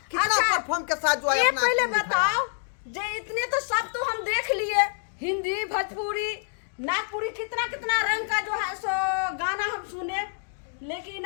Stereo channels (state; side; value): silent; right; digital silence